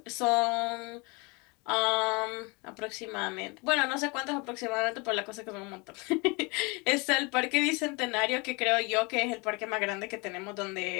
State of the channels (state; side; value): quieter; right; 28.4 dB